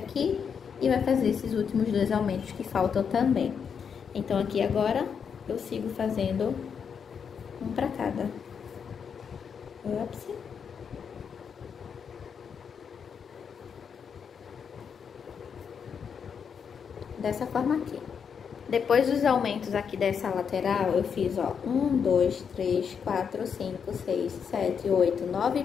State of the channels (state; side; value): quieter; right; 6.8 dB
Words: e vai fazer esses últimos 2 aumentos que faltam também. Então, aqui agora, eu sigo fazendo um pra cada. Ops. Dessa forma aqui. Depois dos aumentos aqui dessa lateral, eu fiz, ó, 1, 2, 3, 4, 5, 6, 7, 8, 9